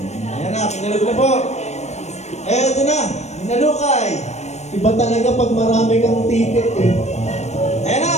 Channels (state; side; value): late; right; 0.32 ms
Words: Ayan na, pinalog na po. Eto na, minalukay. Iba talaga pag marami kang ticket eh. Ayan na.